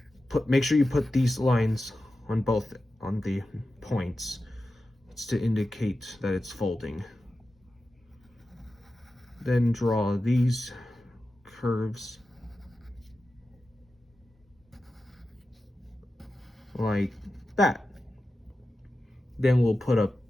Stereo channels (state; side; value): normal; both; correlation 0.92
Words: Make sure you put these lines on the points. It's to indicate that it's folding. Then draw these curves like that. Then we'll put a